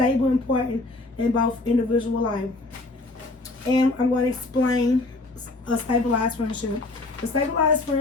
and important in both individual life. And I'm going to explain a stabilized friendship. The stabilized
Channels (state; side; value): quieter; right; 3.0 dB